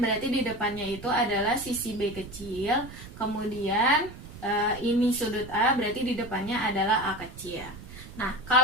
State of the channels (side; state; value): right; noise; rumble, 15 dB below the sound